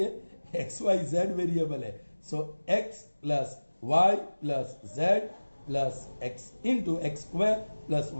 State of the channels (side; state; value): both; inverted; correlation -1.00